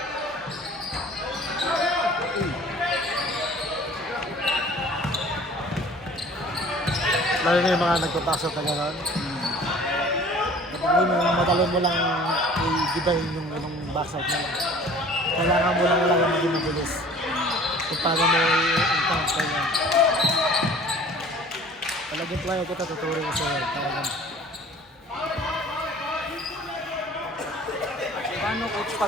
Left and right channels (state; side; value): normal; both; correlation 0.48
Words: Lalo na yung mga nagpapasok na gano'n. Madali mo lang i-gibahin yung backside mo lang. Kailangan mo lang maging mabilis. Kung paano mo i-encounter yan. Talagang player kita tuturin ko sa'yo. Talagang. Paano coach